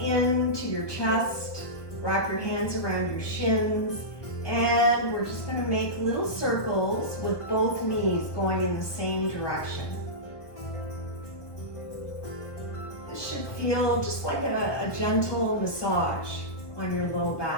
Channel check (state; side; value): late; right; 1.4 ms